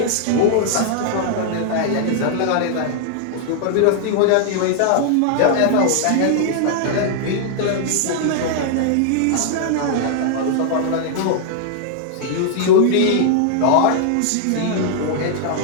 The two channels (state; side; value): different; both; correlation -0.01